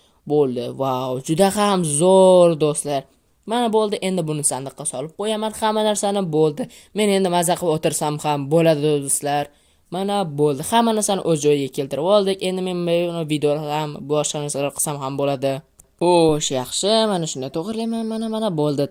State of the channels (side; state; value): both; identical; correlation 1.00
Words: Bo'ldi. Vau, juda ham zo'r do'stlar. Mana bo'ldi, endi buni sandiqqa solib qo'yaman. Hamma narsani bo'ldi. Men endi maza qilib o'tirsam ham bo'ladi do'stlar. Mana bo'ldi. Hamma narsani o'z joyiga keltirib oldik. Endi men buni videoda ham boshqa narsalar qilsam ham bo'ladi. Xo'sh, yaxshi. Mana shunday to'g'rilayman. Mana bo'ldi,